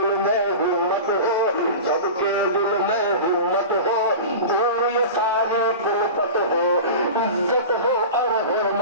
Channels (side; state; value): both; inverted; correlation -0.31